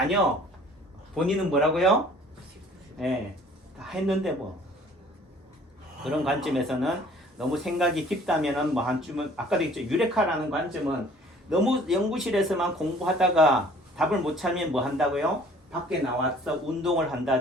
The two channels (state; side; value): normal; both; correlation 0.53